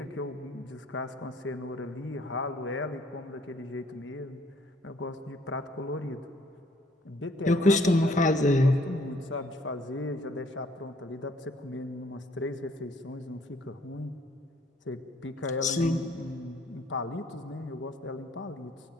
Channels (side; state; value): both; normal; correlation 0.62